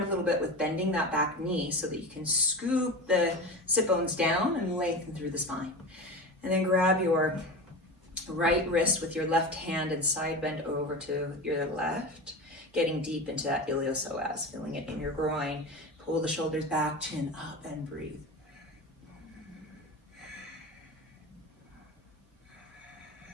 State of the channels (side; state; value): both; normal; correlation 0.28